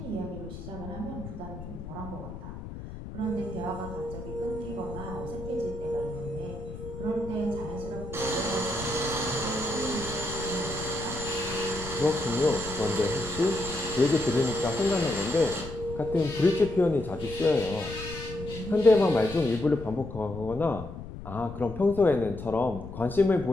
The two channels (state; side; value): noise; left; rumble, 11 dB below the sound